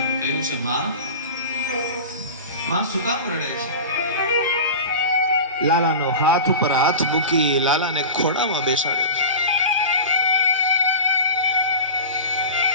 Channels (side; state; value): both; inverted; correlation -0.32